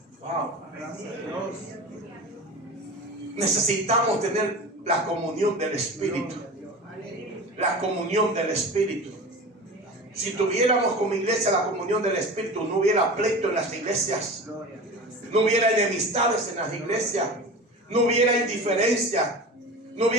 Wow. Necesitamos tener la comunión del Espíritu. La comunión del Espíritu. Si tuviéramos como iglesia la comunión del Espíritu, no hubiera pleito en las iglesias, no hubiera enemistades en las iglesias, no hubiera indiferencia, no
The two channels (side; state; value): both; normal; correlation 0.32